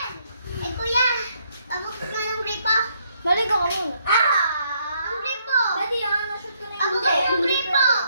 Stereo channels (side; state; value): both; inverted; correlation -0.72